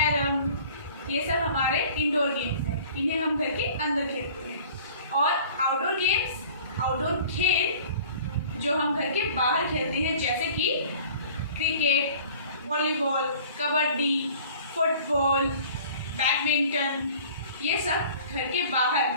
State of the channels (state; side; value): inverted; both; correlation -0.47